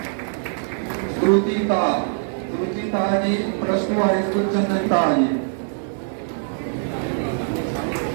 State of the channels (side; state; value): left; silent; 64 dB below the other